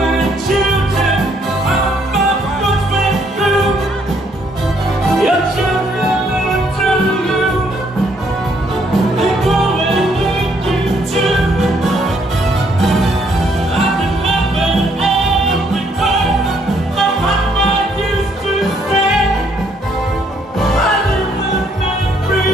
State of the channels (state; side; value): normal; both; correlation 0.69